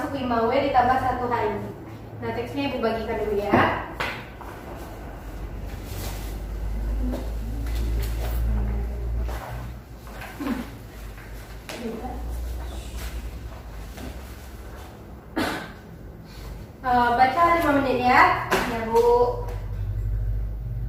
5W ditambah 1H ini. Nah, teksnya Ibu bagikan dulu ya. Baca 5 menit ya. Ya, Bu.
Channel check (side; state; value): both; identical; correlation 1.00